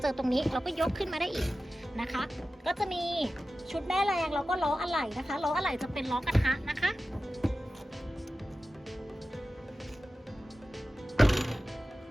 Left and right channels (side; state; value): both; normal; correlation 0.94